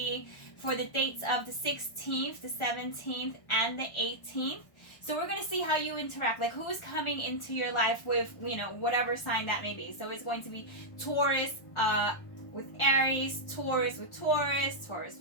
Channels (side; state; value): right; late; 1.1 ms